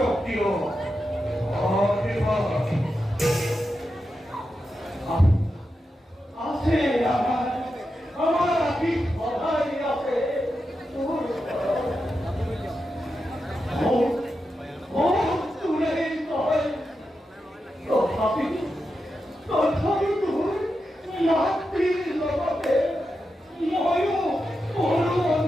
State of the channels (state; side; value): normal; both; correlation 0.89